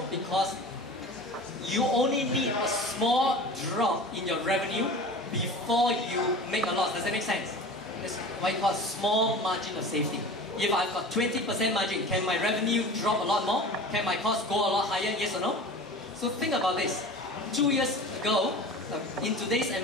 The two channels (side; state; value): both; normal; correlation 0.37